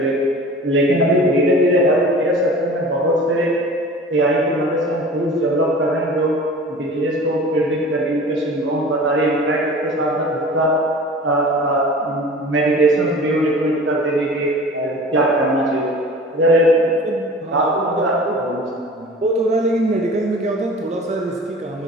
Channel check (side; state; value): both; normal; correlation 0.41